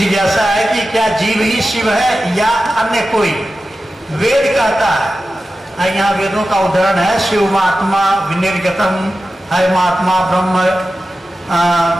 है कि क्या जीव ही शिव है या अन्य कोई? वेद कहता है, यहाँ वेदों का उदाहरण है, शिव आत्मा विनिर्गतम, हयमात्मा ब्रह्म,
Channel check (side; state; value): both; normal; correlation 0.93